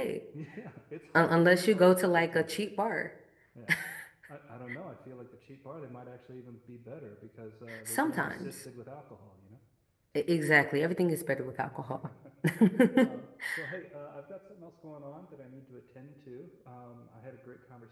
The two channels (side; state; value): both; identical; correlation 1.00